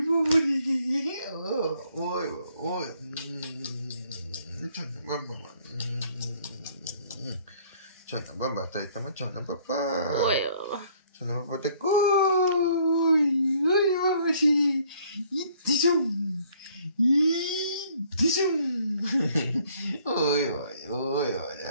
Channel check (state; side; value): inverted; both; correlation -0.61